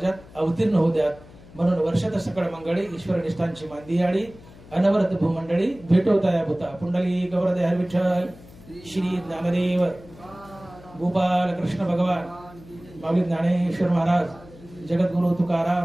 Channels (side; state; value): left; noise; hum, 21 dB below the sound